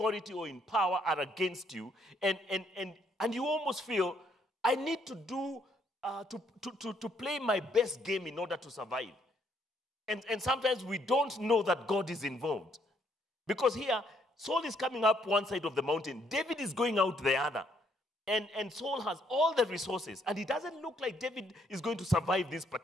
or in power are against you, and you almost feel, I need to do to play my best game in order to survive. And sometimes we don't know that God is involved. Because here, Saul is coming up one side of the mountain, David is going out the other. And Saul has all the resources, and it doesn't look like David is going to survive this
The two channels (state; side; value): normal; both; correlation 0.70